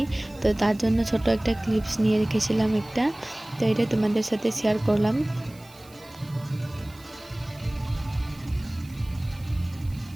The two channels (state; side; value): noise; right; hiss, 24 dB below the sound